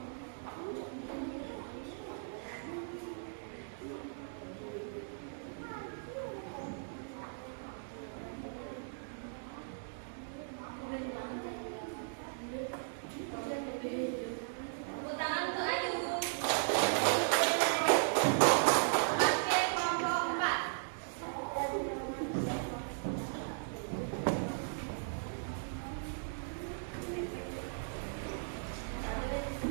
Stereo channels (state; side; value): silent; left; digital silence